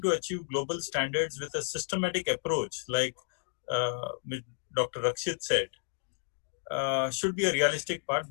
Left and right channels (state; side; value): silent; right; digital silence